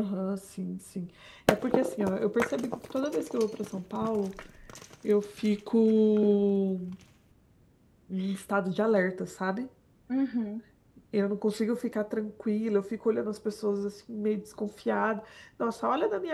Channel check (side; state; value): both; identical; correlation 1.00